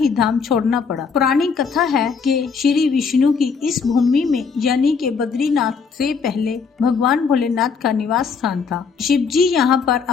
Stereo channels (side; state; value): right; quieter; 5.5 dB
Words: धाम छोड़ना पड़ा। पुरानी कथा है कि श्री विष्णु की इस भूमि में यानी कि बद्रीनाथ से पहले भगवान भोलेनाथ का निवास स्थान था। शिव जी यहाँ पर